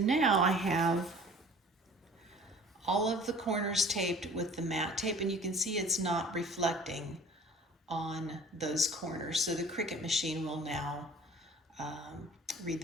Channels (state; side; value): normal; both; correlation 0.47